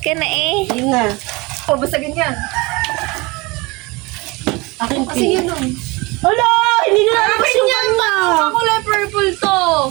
na eh. Yun na. O, basta ganyan. Akin Kasi pink. yun o. Hala! Hindi na lalabas yung kanya. Ang kulay purple to.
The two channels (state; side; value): quieter; left; 25.0 dB